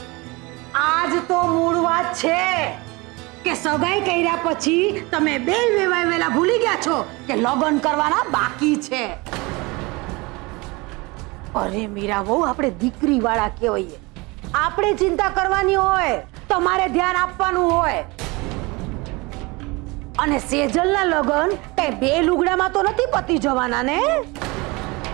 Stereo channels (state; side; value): quieter; left; 25.0 dB